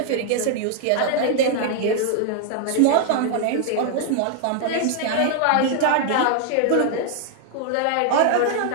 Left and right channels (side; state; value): both; different; correlation 0.00